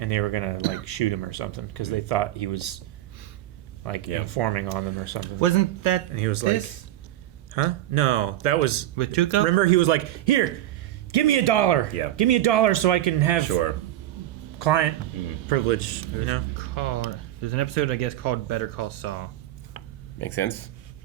they were gonna like shoot him or something because they thought he was like informing on them or something. Wasn't that And he was this? like, huh? No, that was With Tuco? Remember, he was like, here, give me $1. Yeah. Give me $1 so I can have client Mm-hmm. privilege. You know. There's an episode, I guess, called Better Call Saul. Makes sense?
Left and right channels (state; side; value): quieter; left; 13.7 dB